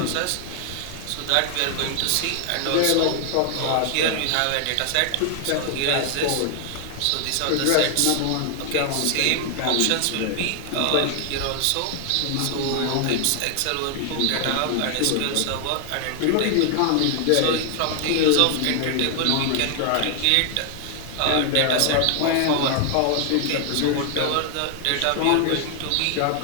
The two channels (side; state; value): both; different; correlation 0.00